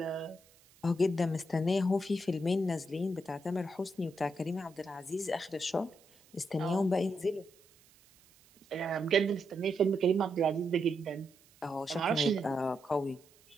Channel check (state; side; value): noise; right; hiss, 28 dB below the sound